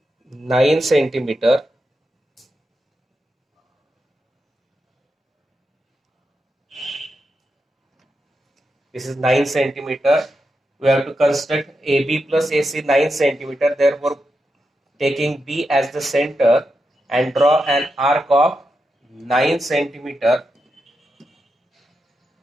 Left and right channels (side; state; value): both; normal; correlation 0.87